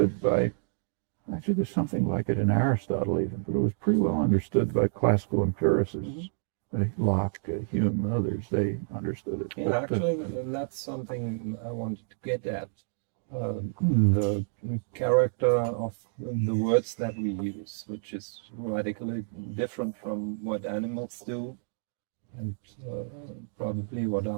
by. Actually, there's something like it in Aristotle even, but it was pretty well understood by classical empiricists. Locke, Hume, and others, they understood it. Yeah, actually, that's something I wanted to get at. The character of the words that we use, which is radically different from what animals do, and probably what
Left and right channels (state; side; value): silent; left; digital silence